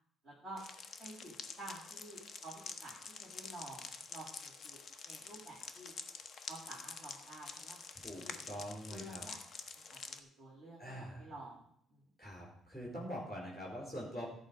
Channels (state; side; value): normal; both; correlation 0.70